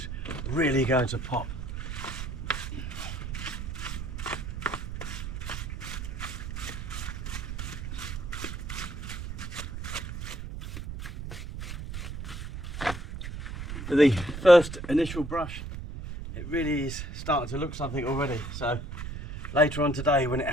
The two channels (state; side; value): noise; right; rumble, 7 dB below the sound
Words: really going to pop. For the first initial brush, it really is starting to look something already. So later on today, when it